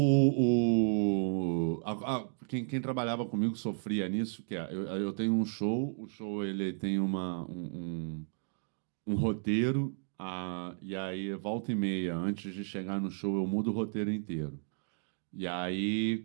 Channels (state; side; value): silent; left; digital silence